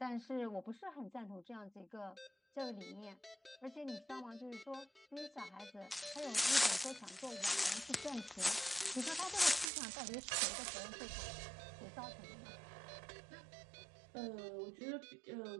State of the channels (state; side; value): drops out; left; at 9.7 s